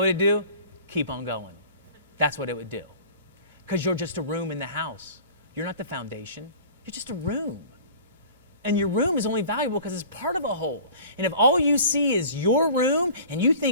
what it'd do? Keep on going. That's what it would do. Because you're just a room in the house. You're not the foundation. You're just a room. And your room is only valuable because it's part of a whole. And if all you see is your room and you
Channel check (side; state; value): both; inverted; correlation -0.43